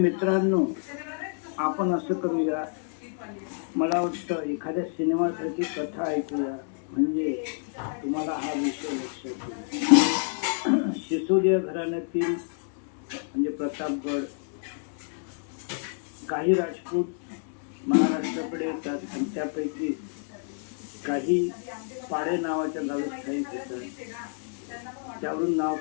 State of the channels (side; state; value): right; silent; 59 dB below the other